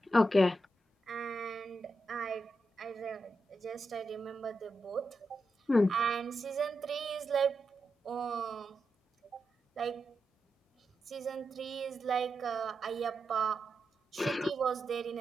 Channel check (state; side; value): normal; both; correlation 0.87